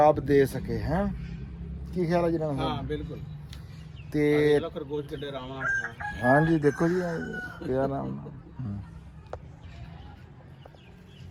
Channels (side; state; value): both; identical; correlation 1.00